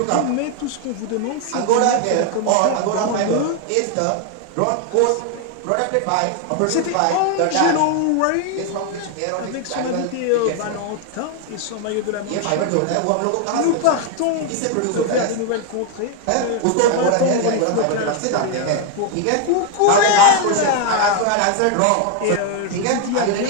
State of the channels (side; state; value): both; different; correlation 0.00